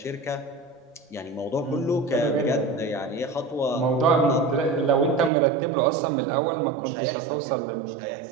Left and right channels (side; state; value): left; drops out; at 5.3 s